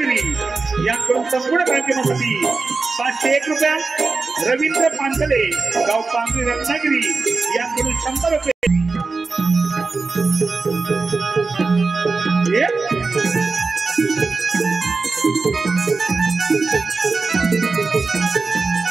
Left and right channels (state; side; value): quieter; left; 4.1 dB